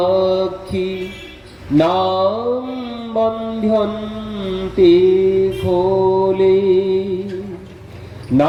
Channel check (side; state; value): both; identical; correlation 1.00